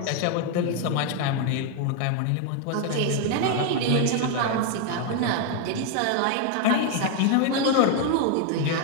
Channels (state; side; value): different; both; correlation 0.01